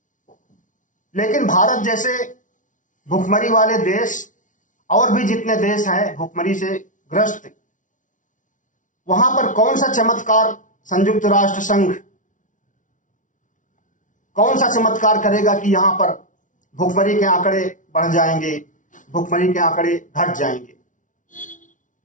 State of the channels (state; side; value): late; right; 0.37 ms